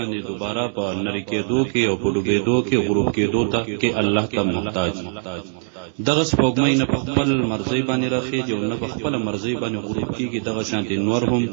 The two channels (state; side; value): silent; left; digital silence